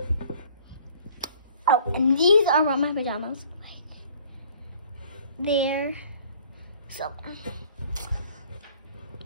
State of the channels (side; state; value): both; inverted; correlation -0.53